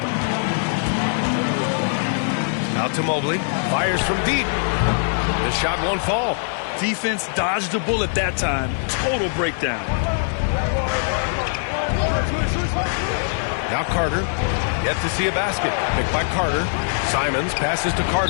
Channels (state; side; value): silent; right; 58 dB below the other